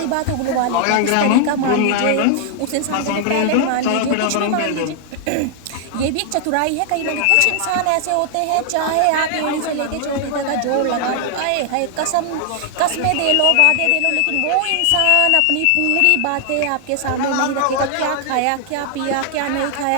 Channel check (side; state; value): both; different; correlation 0.00